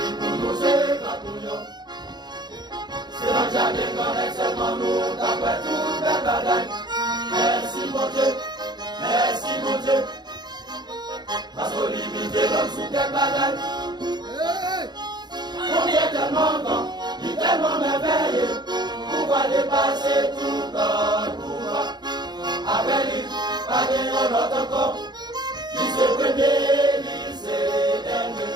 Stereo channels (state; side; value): late; left; 0.21 ms